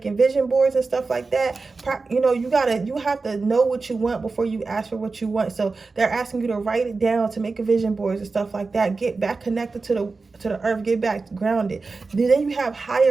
vision boards and stuff like that. You know, you have to know what you want before you ask for what you want. So they're asking you to write it down, to make a vision boards and stuff like that. Get back connected to the earth, get back grounded. Then you have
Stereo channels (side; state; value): left; quieter; 4.0 dB